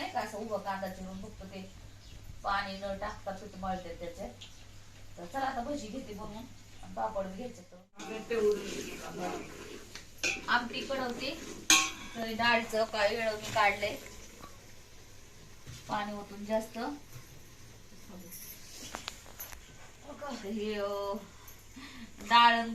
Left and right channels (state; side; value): identical; both; correlation 1.00